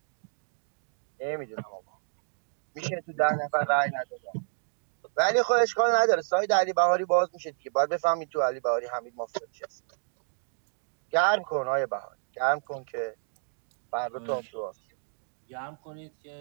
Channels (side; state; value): left; silent; digital silence